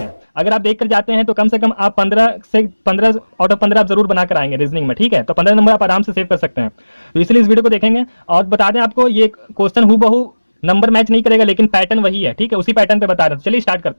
अगर आप देख कर जाते हैं तो कम से कम आप 15 आउट ऑफ 15 आप जरूर बना कर आएंगे रीजनिंग में। ठीक है, तो 15 नंबर आप आराम से सेव कर सकते हैं। तो इसलिए इस वीडियो को देखेंगे और बता दें आपको, ये क्वेश्चन हूबहू नंबर मैच नहीं करेगा लेकिन पैटर्न वही है। ठीक है, उसी पैटर्न पे बता रहे हैं। चलिए स्टार्ट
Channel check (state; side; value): inverted; both; correlation -1.00